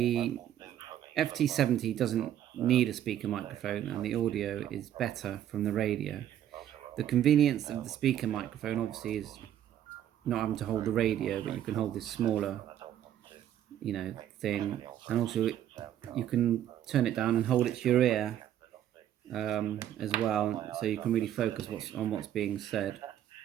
FT70 doesn't need a speaker microphone and the audio is better from the radio. The convenience of the speaker microphone obviously is not having to hold the radio, but you can hold this smaller, thing, and also you can turn it down and hold it to your ear as well, so you can really focus on what's being said.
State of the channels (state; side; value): quieter; left; 11.1 dB